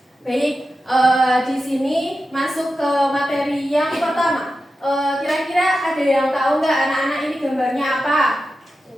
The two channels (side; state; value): both; normal; correlation 0.91